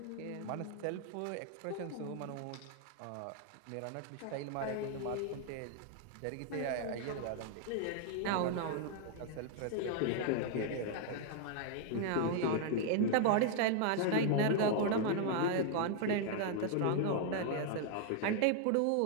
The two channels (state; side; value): different; both; correlation 0.00